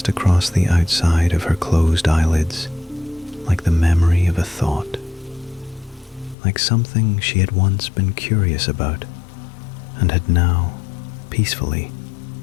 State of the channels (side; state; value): right; drops out; at 6.4 s